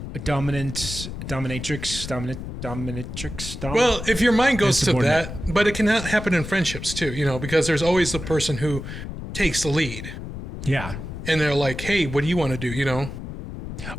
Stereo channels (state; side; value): noise; left; rumble, 8 dB below the sound